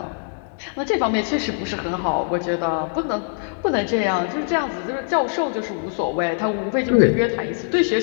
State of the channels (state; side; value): silent; right; digital silence